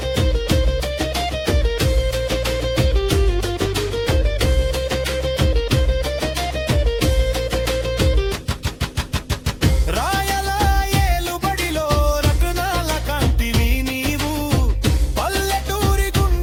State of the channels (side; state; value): both; identical; correlation 1.00